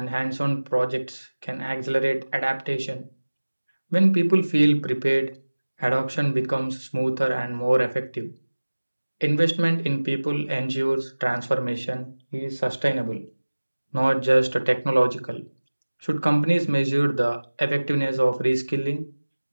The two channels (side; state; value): both; inverted; correlation -1.00